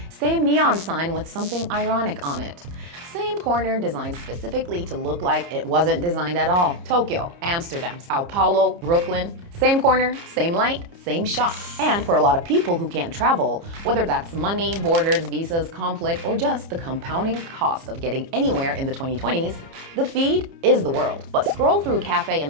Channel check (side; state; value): left; late; 30 ms